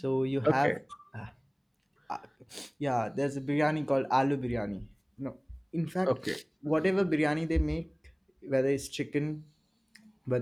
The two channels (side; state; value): both; identical; correlation 1.00